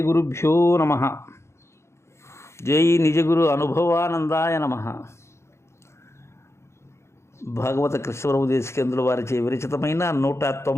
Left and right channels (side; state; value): right; late; 0.13 ms